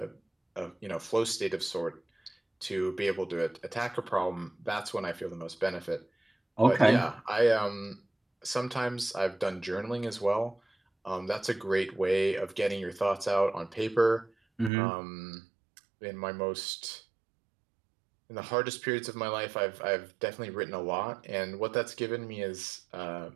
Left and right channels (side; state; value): left; drops out; at 14.7 s